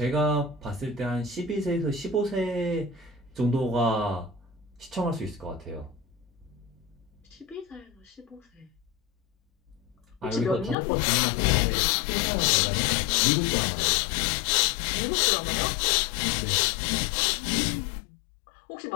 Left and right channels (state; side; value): drops out; right; at 10.8 s